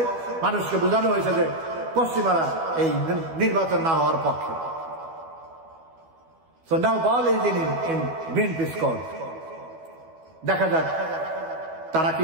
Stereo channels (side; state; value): left; late; 12 ms